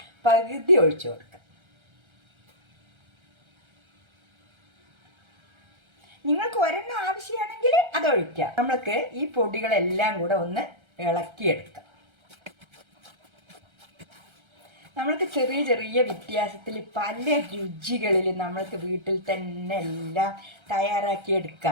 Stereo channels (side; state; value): left; late; 1.3 ms